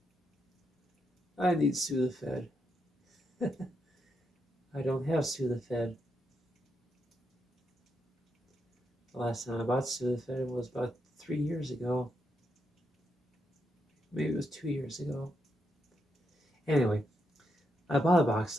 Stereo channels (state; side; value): normal; both; correlation 0.81